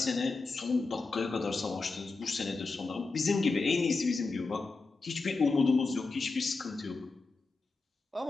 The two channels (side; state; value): right; quieter; 3.9 dB